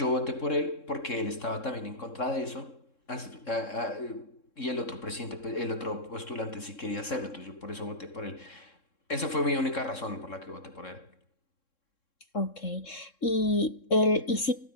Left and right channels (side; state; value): right; late; 3.7 ms